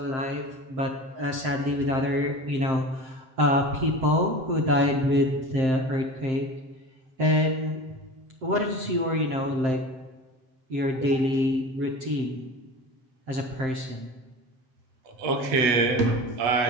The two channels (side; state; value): left; late; 7.6 ms